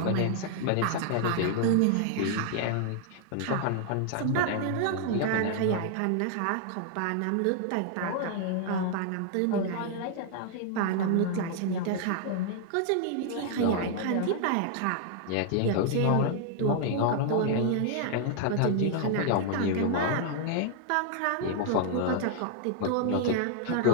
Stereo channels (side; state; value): both; different; correlation 0.00